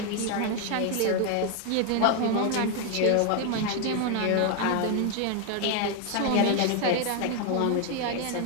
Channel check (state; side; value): different; both; correlation 0.01